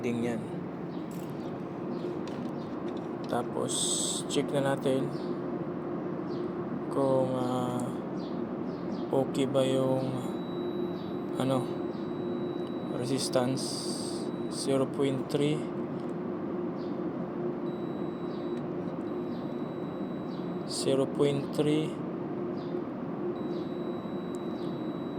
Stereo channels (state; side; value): identical; both; correlation 1.00